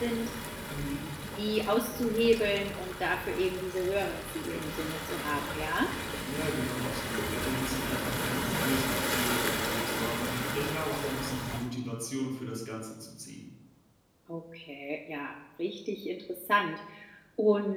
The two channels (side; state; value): both; identical; correlation 1.00